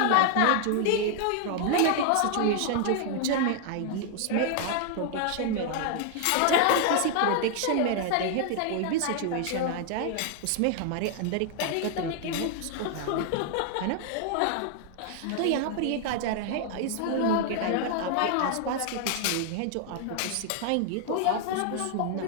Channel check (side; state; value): both; different; correlation 0.00